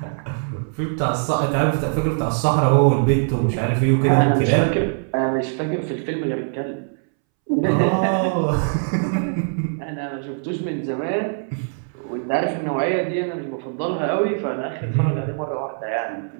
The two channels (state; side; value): silent; left; 64 dB below the other